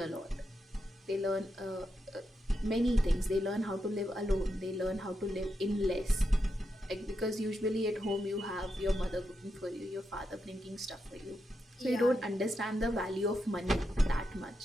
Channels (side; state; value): both; normal; correlation 0.85